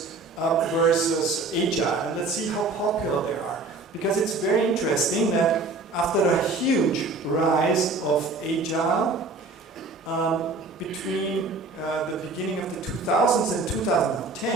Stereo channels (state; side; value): quieter; left; 3.6 dB